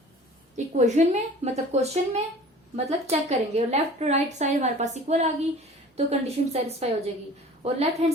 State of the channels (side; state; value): both; normal; correlation 0.44